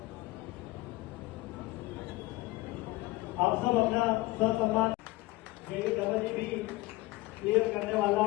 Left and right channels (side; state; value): right; quieter; 20.1 dB